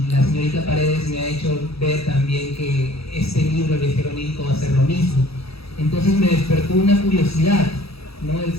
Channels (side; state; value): right; late; 0.77 ms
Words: la señorita Paredes me ha hecho ver también que este libro, El viajero onírico, va a ser lo mismo. Entonces me despertó una curiosidad, ¿no? El